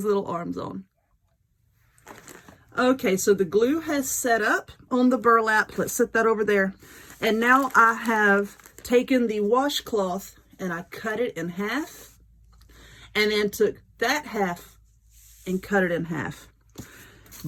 little arms on. Okay, so the glue has set up on the burlap. Let's set that over there. And now I have taken the washcloth and I cut it in half. And then took that half and cut it in half.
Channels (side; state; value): both; identical; correlation 1.00